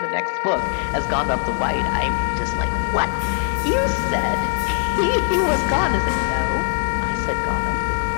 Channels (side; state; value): right; silent; digital silence